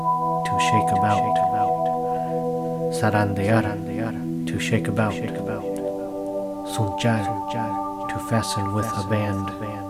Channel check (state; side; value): identical; both; correlation 1.00